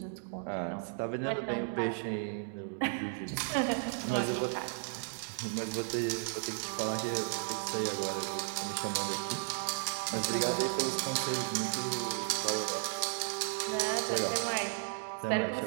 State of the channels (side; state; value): left; silent; digital silence